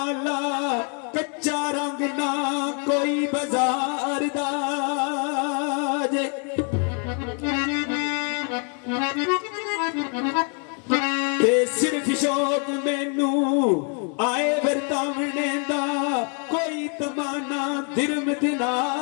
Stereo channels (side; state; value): right; quieter; 39.7 dB